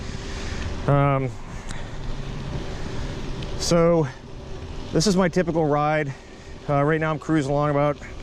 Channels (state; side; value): identical; both; correlation 1.00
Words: So this is my typical ride. Right now I'm cruising along about